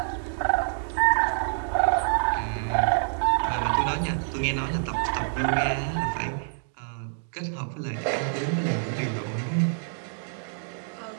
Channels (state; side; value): silent; left; digital silence